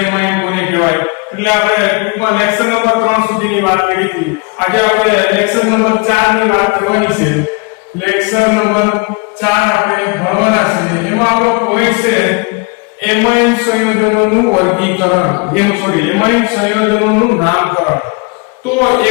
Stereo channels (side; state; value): right; quieter; 30.5 dB